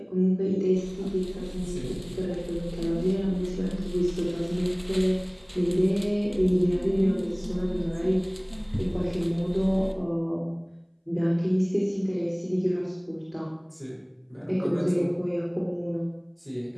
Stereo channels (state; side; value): identical; both; correlation 1.00